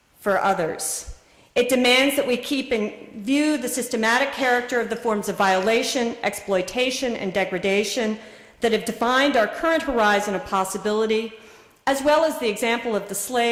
for others. It demands that we keep in view the systematic character of the forms of violation, exploitation, and degradation that have defined our current horizon of possibility, as well as the example of the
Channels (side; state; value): both; identical; correlation 1.00